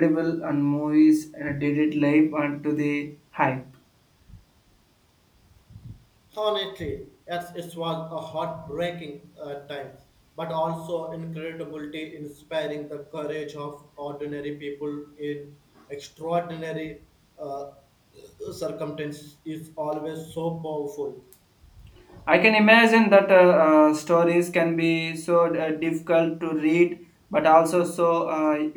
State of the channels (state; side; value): identical; both; correlation 1.00